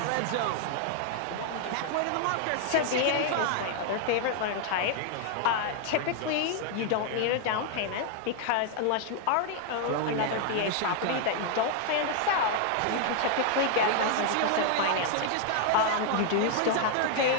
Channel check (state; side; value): different; both; correlation 0.00